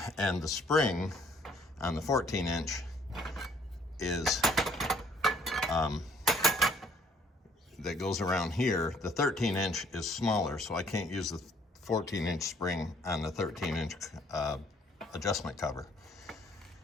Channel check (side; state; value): both; normal; correlation 0.62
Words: and the spring on the 14-inch is that goes around here. The 13-inch is smaller, so I can't use the 14-inch spring on the 13-inch adjustment cover.